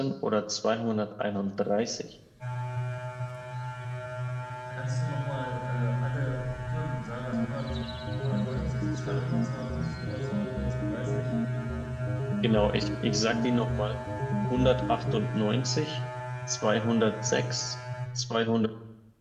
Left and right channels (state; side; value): identical; both; correlation 1.00